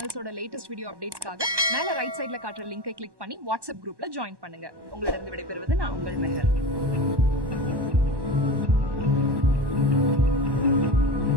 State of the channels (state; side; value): late; left; 1.1 ms